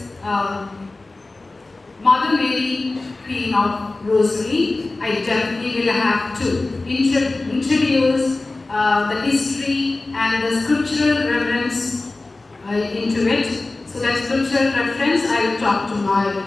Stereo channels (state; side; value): quieter; right; 3.2 dB